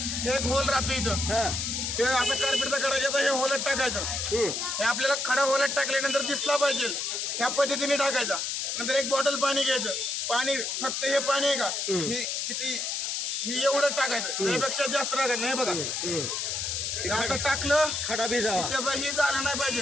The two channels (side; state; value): left; noise; hiss, 2 dB below the sound